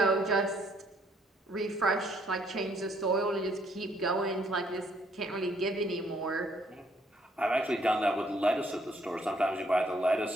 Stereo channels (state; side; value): normal; both; correlation 0.67